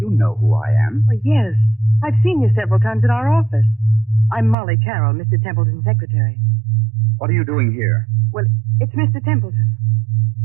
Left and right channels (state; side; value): drops out; left; at 4.5 s